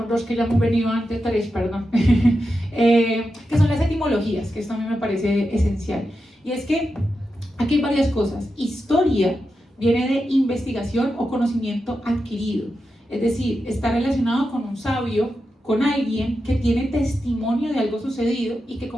dos que ya hemos venido antes, tres, perdón, que son las etimologías, que esto a mí me parece esencial. Y es que aquí hay varias cosas. Historia viene de investigación o conocimiento adquirido, es decir, está relacionado con un sabio, con alguien que tiene testimonio de algo sucedido y que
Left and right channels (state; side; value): normal; both; correlation 0.89